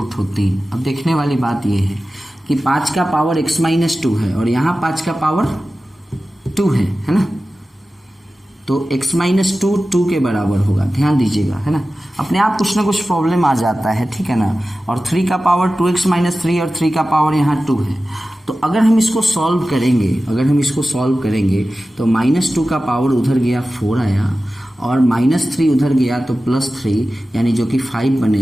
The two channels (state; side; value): normal; both; correlation 0.95